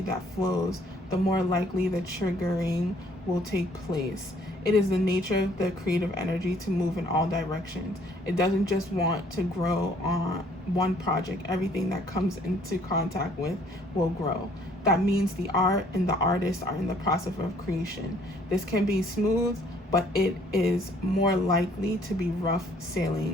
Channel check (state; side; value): normal; both; correlation 0.61